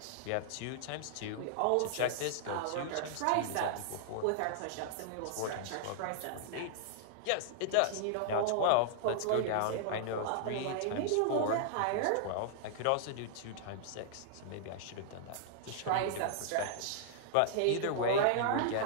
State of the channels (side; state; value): both; different; correlation -0.01